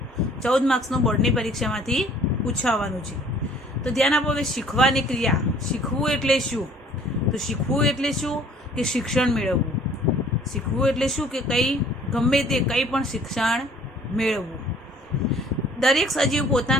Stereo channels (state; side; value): normal; both; correlation 0.55